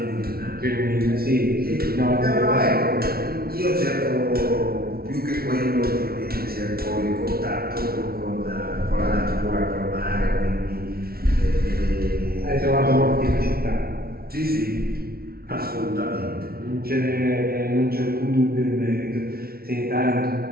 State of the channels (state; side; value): late; left; 0.44 ms